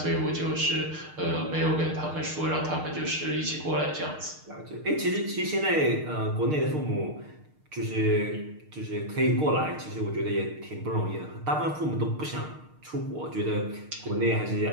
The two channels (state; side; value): late; left; 6.6 ms